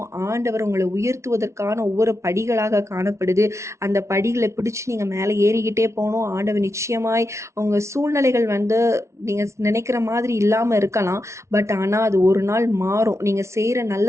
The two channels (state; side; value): late; left; 0.13 ms